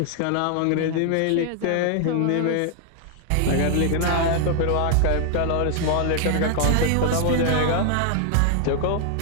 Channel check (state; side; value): different; both; correlation 0.00